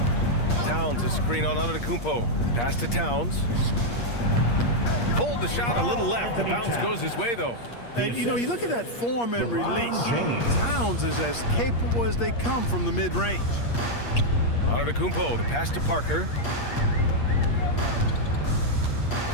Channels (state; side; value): late; right; 8.5 ms